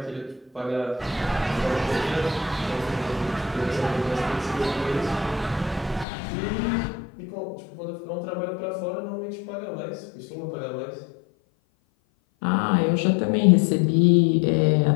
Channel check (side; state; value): right; drops out; at 6.1 s